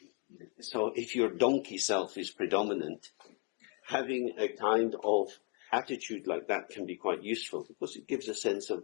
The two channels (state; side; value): quieter; right; 36.8 dB